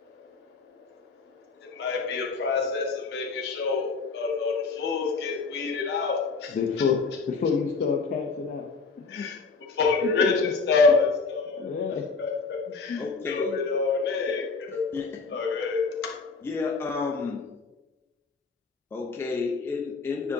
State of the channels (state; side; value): quieter; right; 4.4 dB